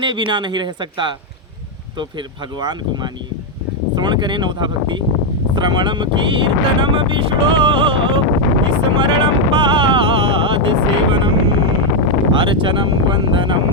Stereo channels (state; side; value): normal; both; correlation 0.01